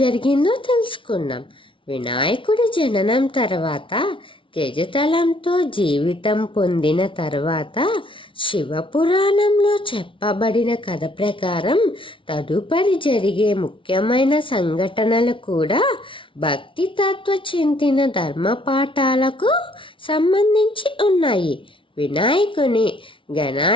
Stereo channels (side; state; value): right; late; 0.25 ms